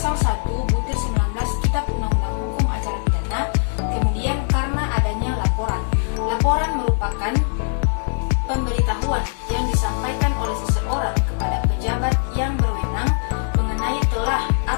1/19 Kitab Undang-Undang Hukum Acara Pidana, kemudian karena adanya laporan. Laporan merupakan pemberitahuan yang disampaikan oleh seseorang kepada pejabat yang berwenang mengenai telah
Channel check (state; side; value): silent; right; digital silence